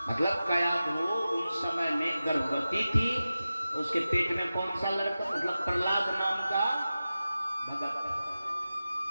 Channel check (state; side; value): inverted; both; correlation -0.94